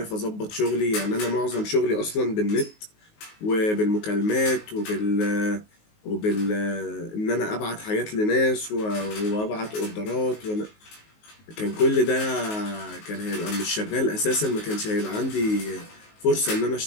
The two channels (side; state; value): right; late; 19 ms